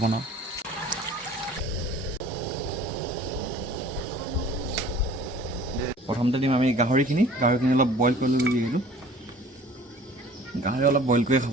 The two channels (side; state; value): both; normal; correlation 0.48